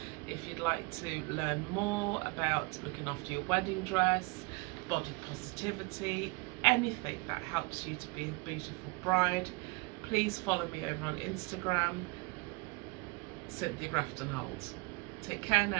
If you'd like to learn more about looking after your wedding dress, body positivity, anything that helps you to be a beautiful bride, please follow me over on Instagram, Cynthia Grafton-Holt. Take care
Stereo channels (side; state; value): left; quieter; 26.9 dB